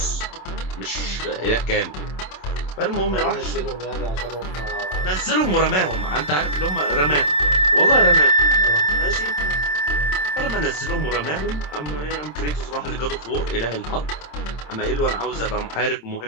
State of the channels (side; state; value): right; late; 27 ms